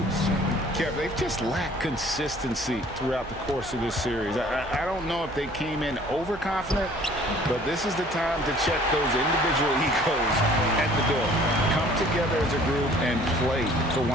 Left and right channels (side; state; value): right; noise; hum, 18 dB below the sound